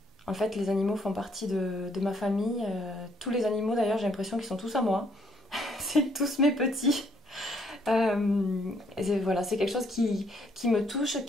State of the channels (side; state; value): both; normal; correlation 0.69